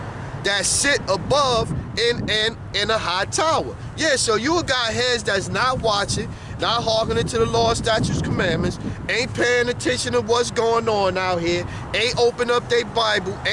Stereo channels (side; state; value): both; identical; correlation 1.00